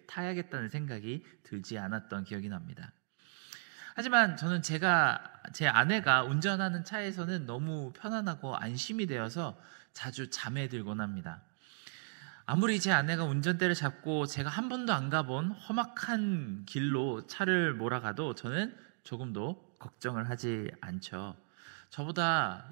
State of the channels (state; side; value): silent; left; 54 dB below the other